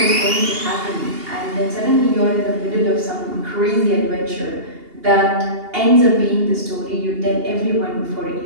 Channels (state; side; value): late; left; 2.8 ms